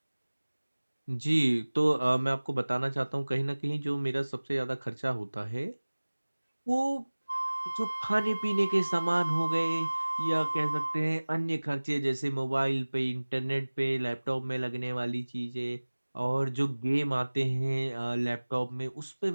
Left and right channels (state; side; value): inverted; both; correlation -1.00